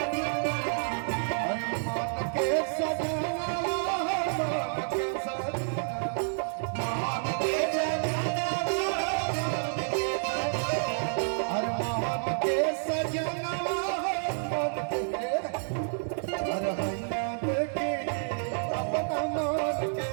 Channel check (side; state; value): left; silent; digital silence